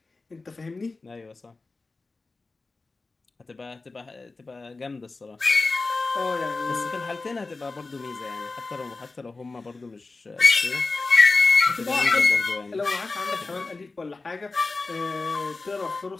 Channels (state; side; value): quieter; right; 3.7 dB